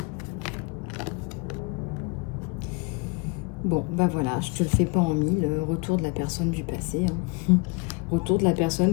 Bon, bah voilà, je te le fais pas en mille. Retour de la personne du passé. Hein. Retour de la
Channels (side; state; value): right; quieter; 29.2 dB